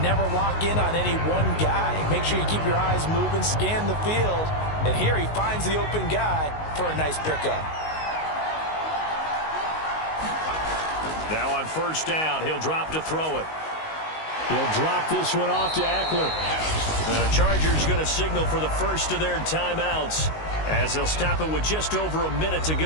lock in on any one guy. Make sure you keep your eyes moving, scan the field, and here he finds the open guy for a nice pickup. Now on first down, he'll drop to throw it. He'll drop this one off to Eckler. The Chargers going to signal for the first of their timeouts as they'll stop it with just over a minute to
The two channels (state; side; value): late; right; 19 ms